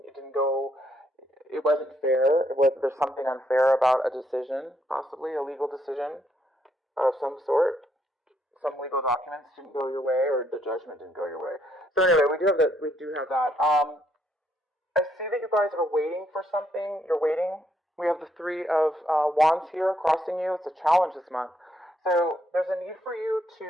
It wasn't fair. There's something unfair about a decision, possibly a legal decision of some sort. Some legal documents didn't go your way, or the judgment didn't go your way. So anyway, we do have that. I see that you guys are waiting for something. You're waiting. We have the Three of Wands here crossing you. It's a challenge this month. So there's a need for you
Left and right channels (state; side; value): normal; both; correlation 0.73